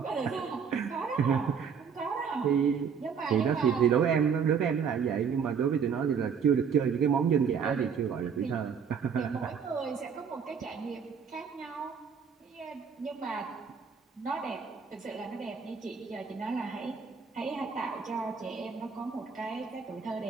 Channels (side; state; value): left; quieter; 6.6 dB